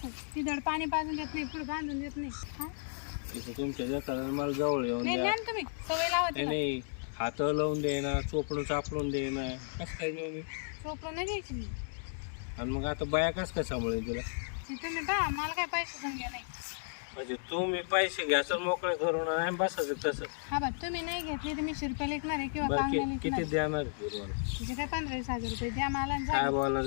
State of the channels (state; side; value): silent; right; digital silence